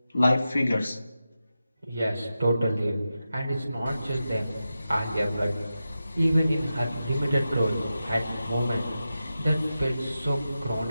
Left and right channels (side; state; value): both; inverted; correlation -0.91